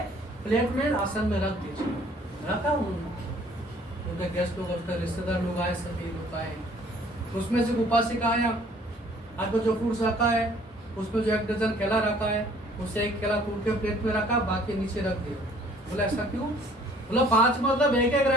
प्लेट में आसन में रख दीजिए। रखा उन्होंने। उनके गेस्ट लोग, उनके रिश्तेदार लोग आए, सभी लोग आए। तो उसमें से उपासिका आया, आपको जो फ्रूट्स रखा है उसमें जो 1 डजन केला रखा है, उससे 1 केला तोड़ के प्लेट में रखा, बाकी नीचे रख दिया। बोला ऐसा क्यों? बोला 5 मतलब 1-1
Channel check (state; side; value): normal; both; correlation 0.57